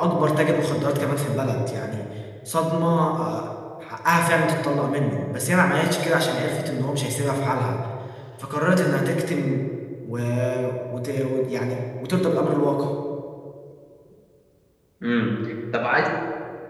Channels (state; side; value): identical; both; correlation 1.00